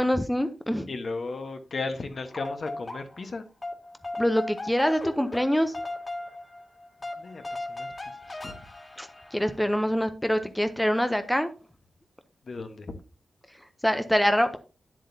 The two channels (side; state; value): both; normal; correlation 0.98